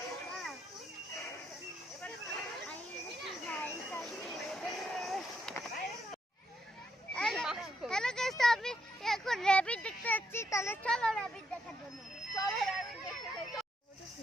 হ্যালো গাইস, তো আমি এখন র‍্যাবিট দেখতে যাচ্ছি। তাহলে চলো র‍্যাবিট দেখার জন্য। চলো র‍্যাবিট দেখতে যাই। ওটা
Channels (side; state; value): both; normal; correlation 0.77